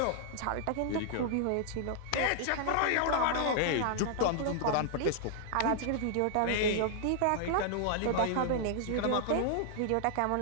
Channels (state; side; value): different; both; correlation -0.01